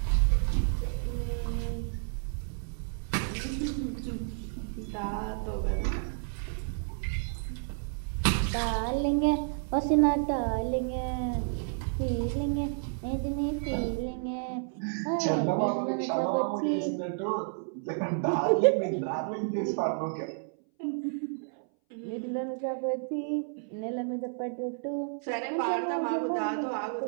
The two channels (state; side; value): silent; left; 57 dB below the other